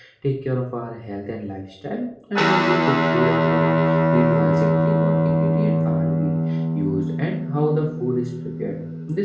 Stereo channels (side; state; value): both; identical; correlation 1.00